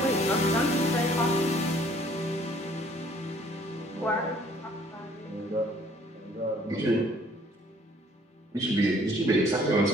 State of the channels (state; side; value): normal; both; correlation 0.58